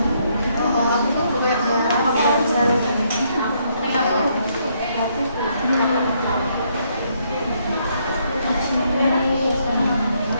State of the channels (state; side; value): inverted; both; correlation -0.72